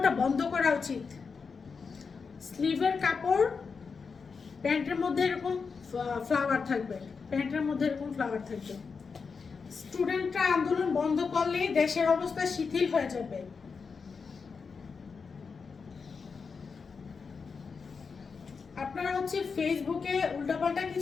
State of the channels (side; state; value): right; quieter; 5.3 dB